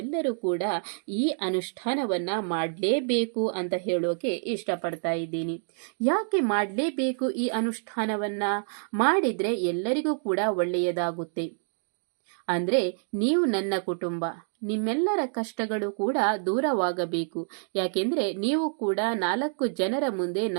ಕೂಡ ಈ ಅನುಷ್ಠಾನವನ್ನ ಮಾಡಲೇಬೇಕು ಅಂತ ಹೇಳೋಕೆ ಇಷ್ಟಪಡ್ತಾ ಇದ್ದೀನಿ. ಯಾಕೆ ಮಾಡಲೇಬೇಕು? ಈ ಅನುಷ್ಠಾನವನ್ನ ಮಾಡಿದ್ರೆ ಎಲ್ಲರಿಗೂ ಕೂಡ ಒಳ್ಳೆಯದಾಗುತ್ತೆ. ಅಂದ್ರೆ ನೀವು ನನ್ನ ಕುಟುಂಬ, ನಿಮ್ಮೆಲ್ಲರ ಕಷ್ಟಗಳು ಕೂಡ ದೂರವಾಗಬೇಕು. ಯಾಕೆಂದ್ರೆ ನೀವು ಕೂಡ 4 ಜನರ ಮುಂದೆ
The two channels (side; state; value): left; silent; 60 dB below the other